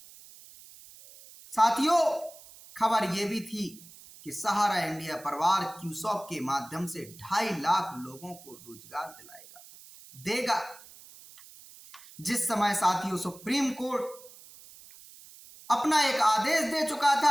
साथियों खबर यह भी थी कि सहारा इंडिया परिवार क्यूसॉप के माध्यम से 2.5 लाख लोगों को रोजगार देगा। जिस समय साथियों सुप्रीम कोर्ट अपना एक आदेश दे चुका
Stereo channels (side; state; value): right; noise; hiss, 20 dB below the sound